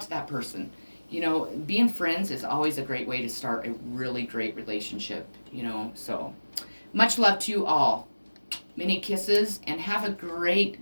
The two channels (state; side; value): inverted; both; correlation -1.00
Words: to that person. Being friends is always a great way to start a really great relationship, so much love to you all. Many kisses, and have a great